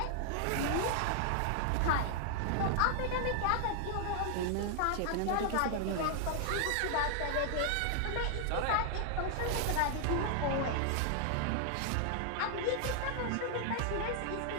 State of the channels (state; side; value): different; both; correlation 0.00